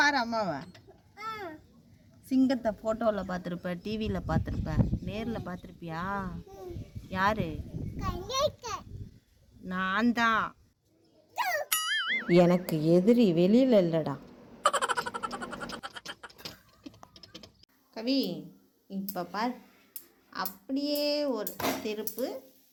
அம்மாவை. சிங்கத்தை ஃபோட்டோவில் பார்த்துருப்ப, டிவியில் பார்த்துருப்ப, நேரில் பார்த்துருப்பியா? யாரு? நான் தான். எனக்கு எதிரி வெளியில் இல்லைடா. கவி, இப்போ பார், அப்படியே ஒரு திருப்பு,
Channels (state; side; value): identical; both; correlation 1.00